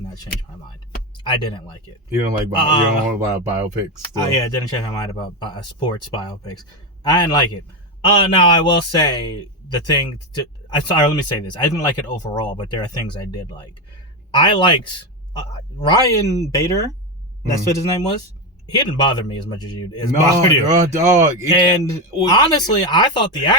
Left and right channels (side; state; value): both; normal; correlation 0.12